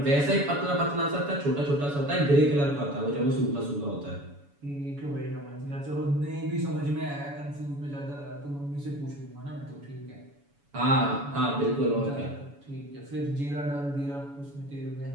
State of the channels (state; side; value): late; left; 7.0 ms